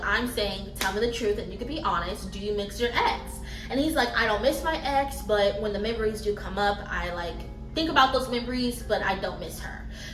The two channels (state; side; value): identical; both; correlation 1.00